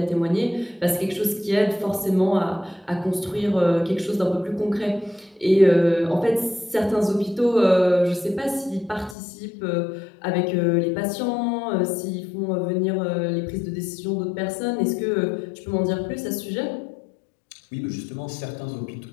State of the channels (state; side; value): drops out; right; at 9.2 s